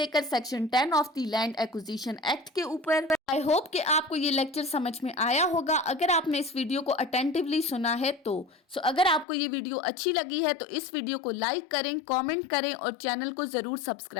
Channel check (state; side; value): drops out; right; at 9.2 s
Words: section 10 of the land acquisition act के ऊपर। आई होप कि आपको ये लेक्चर समझ में आया होगा। अगर आपने इस वीडियो को अटेंटिवली सुना है तो अगर आपको ये वीडियो अच्छी लगी है तो इस वीडियो को लाइक करें, कमेंट करें और चैनल को जरूर